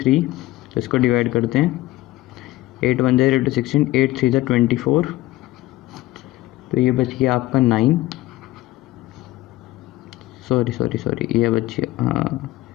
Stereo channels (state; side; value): quieter; right; 17.4 dB